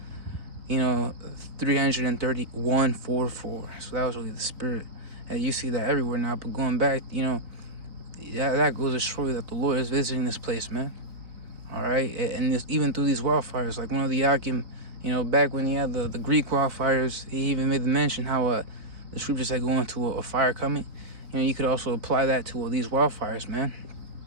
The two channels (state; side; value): late; left; 3.8 ms